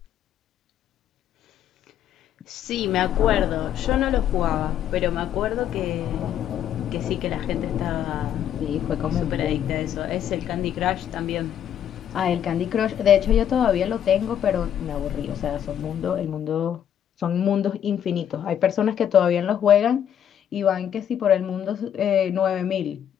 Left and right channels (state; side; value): quieter; right; 9.7 dB